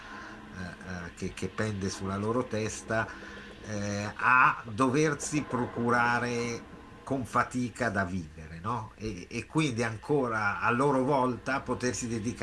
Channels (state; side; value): identical; both; correlation 1.00